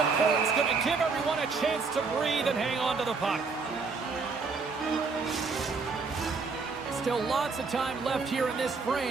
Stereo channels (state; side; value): quieter; left; 4.6 dB